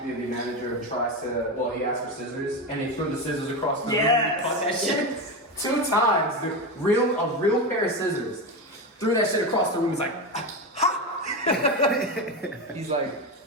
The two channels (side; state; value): both; normal; correlation 0.17